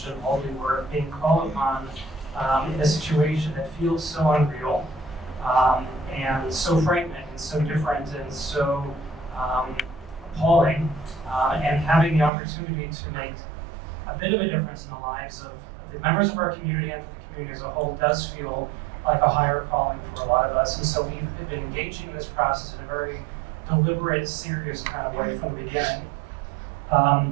in holy work, being called upon in a situation that feels so unreal and so frightening and so different and so appalling, and having the opportunity to make a bit of a difference in the lives of the members of our community and for the community as a whole does feel like a higher calling for a lot of us. And so we've been engaging in this process in a very deliberate, serious kind of way from the beginning.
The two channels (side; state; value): left; drops out; at 12.3 s